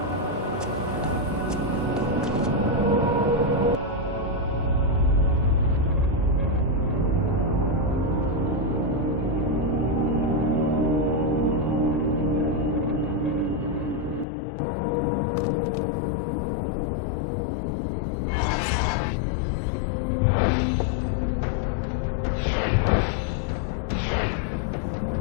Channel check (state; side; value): drops out; right; at 14.2 s